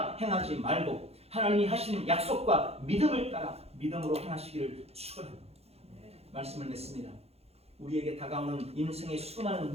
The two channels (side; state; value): left; late; 0.30 ms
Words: 행하지 말고 하나님이 하시는 약속과 믿음을 따라 믿음으로 행하시기를 축원합니다. 말씀을 맺습니다. 우리에게 다가오는 인생의 수많은